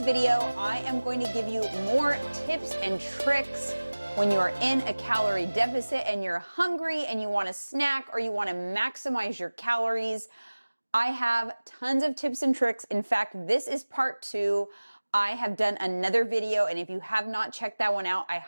video, I am going to give you more tips and tricks when you are in a calorie deficit and you're hungry and you want a snack or you want to maximize your calories. I have tons of tips and tricks. In fact, this is part 2. I have done another video, and if you have not checked that one out, I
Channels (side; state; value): both; inverted; correlation -1.00